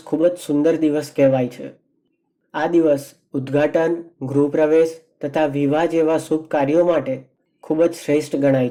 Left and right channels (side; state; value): both; identical; correlation 1.00